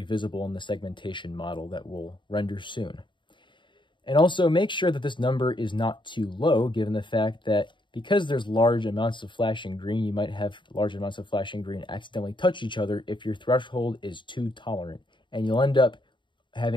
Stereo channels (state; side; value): late; right; 0.23 ms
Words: visible in the segmentation model that we'll render soon. And also make sure that this number is not too low, given the fact that because there's large amounts of flashing green, you might have large amounts of flashing green accidentally touch each other if your threshold is too tolerant. And you'll end up